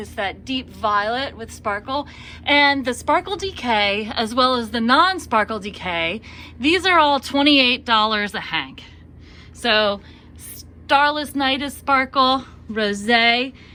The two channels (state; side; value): identical; both; correlation 1.00